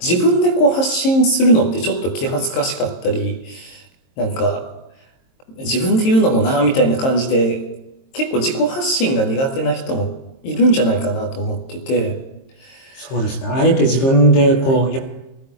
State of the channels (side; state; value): right; late; 22 ms